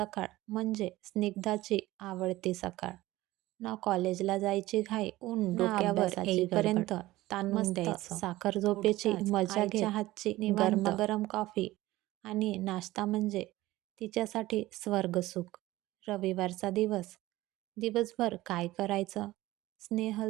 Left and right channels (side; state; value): left; quieter; 17.4 dB